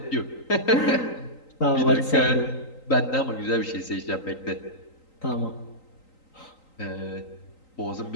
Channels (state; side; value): late; right; 3.9 ms